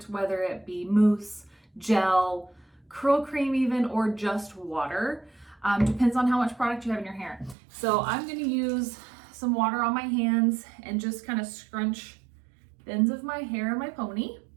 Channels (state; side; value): drops out; left; at 7.6 s